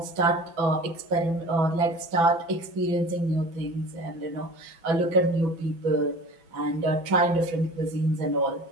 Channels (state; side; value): late; left; 6.0 ms